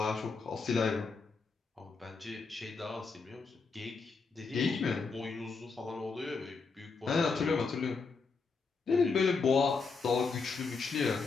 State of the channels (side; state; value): right; quieter; 4.7 dB